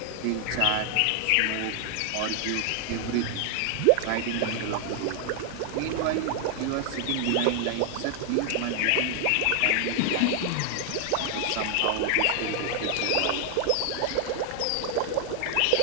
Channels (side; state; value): both; different; correlation 0.00